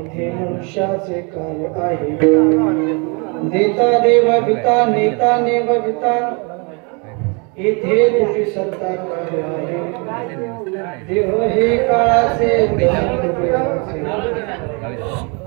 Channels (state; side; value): quieter; left; 33.2 dB